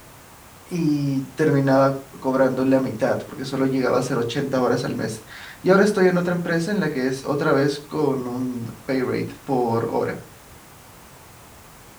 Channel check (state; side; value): identical; both; correlation 1.00